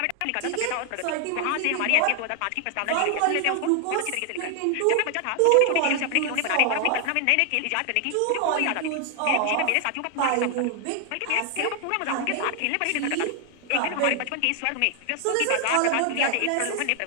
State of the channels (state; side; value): different; both; correlation 0.00